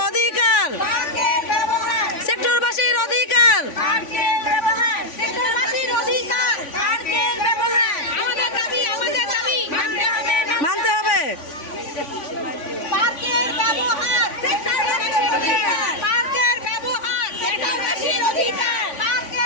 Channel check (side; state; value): right; late; 3.5 ms